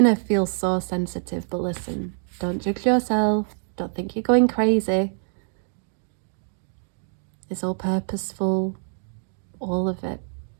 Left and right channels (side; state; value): left; silent; digital silence